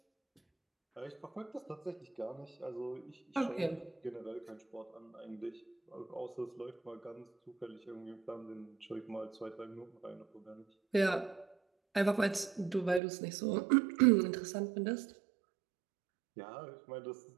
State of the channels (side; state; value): left; drops out; at 13.0 s